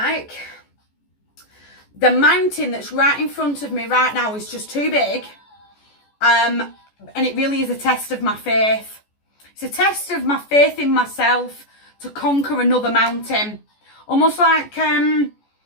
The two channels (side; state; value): right; late; 14 ms